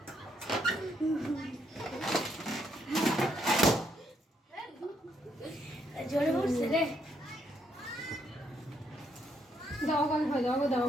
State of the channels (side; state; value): both; normal; correlation 0.74